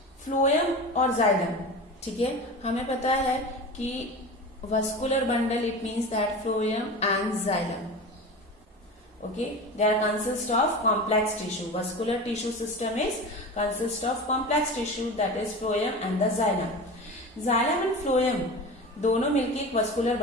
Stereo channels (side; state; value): both; normal; correlation 0.30